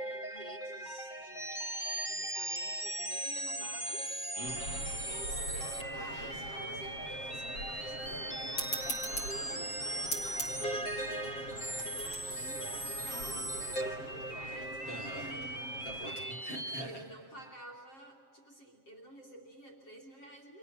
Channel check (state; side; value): late; right; 7.5 ms